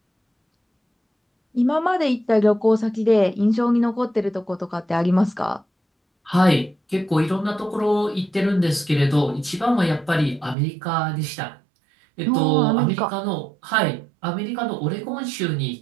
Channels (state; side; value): drops out; left; at 10.6 s